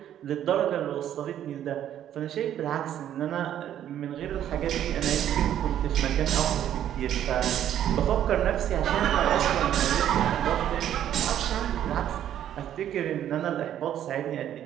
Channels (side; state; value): left; quieter; 10.8 dB